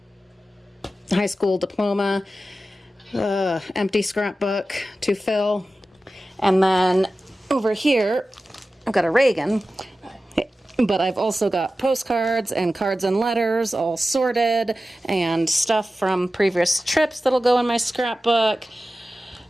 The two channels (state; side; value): normal; both; correlation 0.94